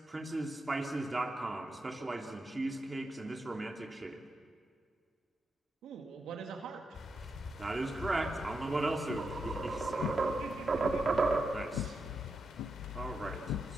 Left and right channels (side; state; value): both; normal; correlation 0.85